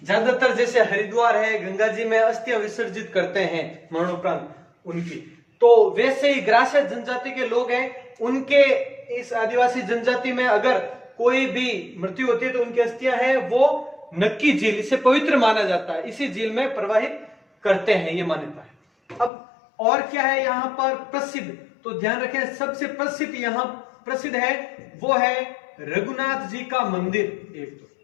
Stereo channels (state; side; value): drops out; right; at 19.3 s